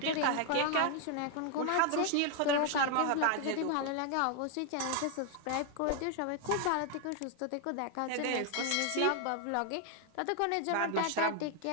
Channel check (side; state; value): both; different; correlation 0.00